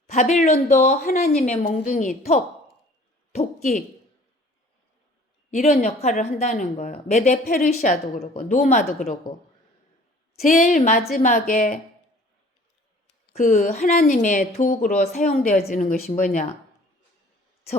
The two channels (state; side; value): normal; both; correlation 0.51